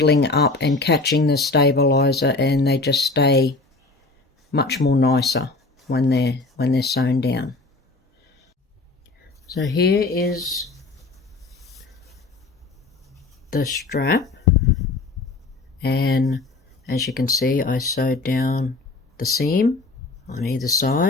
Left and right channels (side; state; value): right; quieter; 3.6 dB